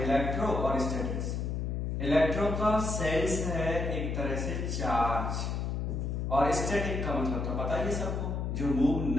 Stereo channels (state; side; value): noise; left; hum, 1 dB below the sound